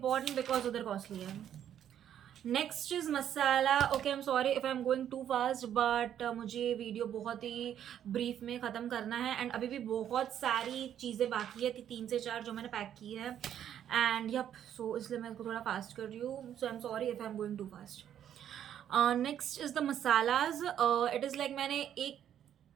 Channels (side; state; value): left; quieter; 10.1 dB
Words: because उधर कॉस्टली है. Next is masala. Okay, I am sorry if I am going too fast, but मुझे वीडियो बहुत ही ब्रीफ में ख़त्म करना है एंड अभी भी बहुत सारी चीज़ें बाकी है, 3 से 4 जो मैंने पैक की है एंड यप, सो इसलिए मैं इसको थोड़ा फास्ट कर रही हूँ. So I am sorry if I am going too fast. Next is the masalas. It is like मैंने